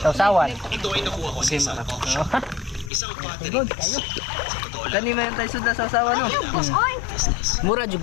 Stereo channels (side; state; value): right; drops out; at 2.9 s